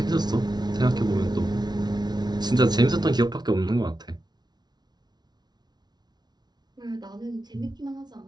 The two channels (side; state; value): left; late; 0.20 ms